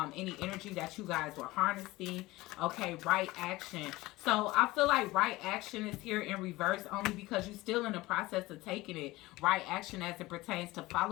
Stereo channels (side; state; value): right; quieter; 19.5 dB